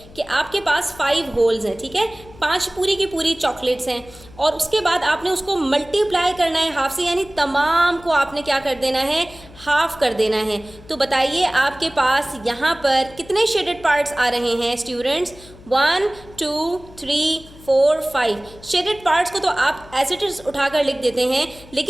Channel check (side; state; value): left; noise; hum, 21 dB below the sound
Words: कि आपके पास 5 होल्स हैं, ठीक है, 5 पूरी की पूरी चॉकलेट्स हैं और उसके बाद आपने उसको मल्टीप्लाई करना है हाफ से, यानी तमाम को आपने क्या कर देना है, हाफ कर देना है। तो बताइए आपके पास यहाँ पर कितने शेडेड पार्ट्स आ रहे हैं स्टूडेंट्स? 1 2 3 4 5 शेडेड पार्ट्स को तो आप एज इट इज उठाकर लिख देते हैं,